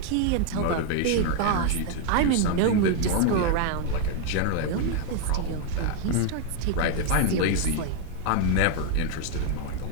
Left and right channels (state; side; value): different; both; correlation 0.00